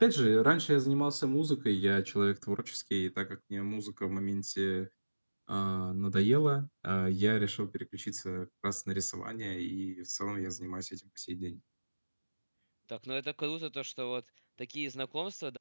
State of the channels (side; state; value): both; inverted; correlation -1.00